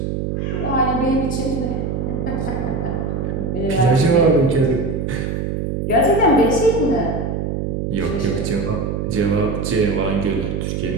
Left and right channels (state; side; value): noise; right; hum, 2 dB below the sound